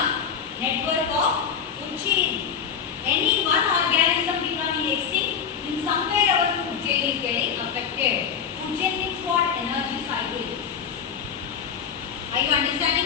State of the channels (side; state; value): right; quieter; 7.3 dB